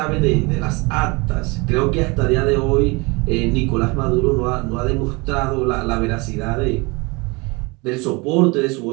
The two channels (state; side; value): quieter; left; 26.7 dB